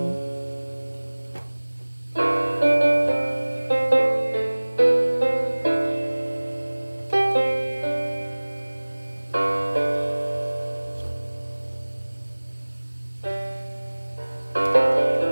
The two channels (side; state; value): both; inverted; correlation -1.00